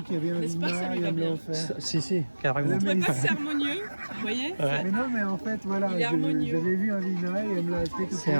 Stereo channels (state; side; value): inverted; both; correlation -1.00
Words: qu'il y avait un vina et elle me l'a offert. Si, carrément. C'est harmonieux, vous voyez? Ouais. Mais non mais en fait voilà, j'avais vu un vina et elle me l'a acheté tout de suite. C'est